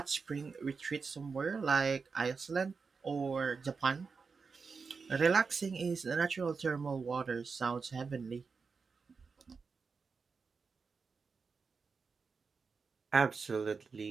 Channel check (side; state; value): left; quieter; 5.0 dB